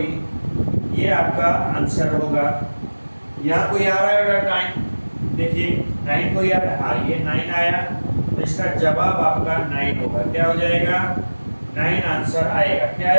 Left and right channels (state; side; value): inverted; both; correlation -1.00